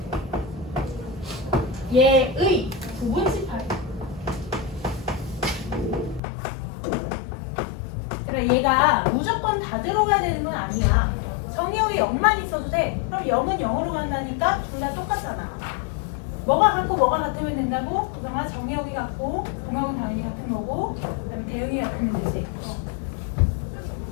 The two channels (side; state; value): right; drops out; at 6.2 s